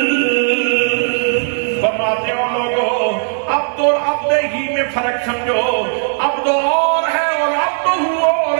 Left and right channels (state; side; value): silent; left; digital silence